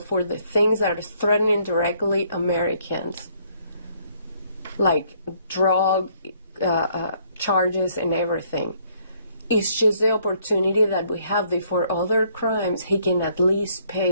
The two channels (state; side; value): inverted; both; correlation -0.66